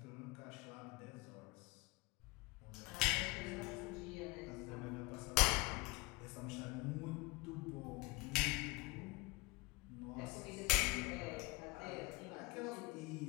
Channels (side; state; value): right; quieter; 23.5 dB